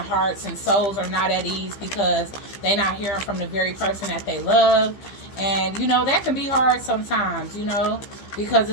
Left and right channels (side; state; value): right; late; 15 ms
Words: hearts and souls are not at ease because they're not hearing from the very person that they love. And that can be hard sometimes, because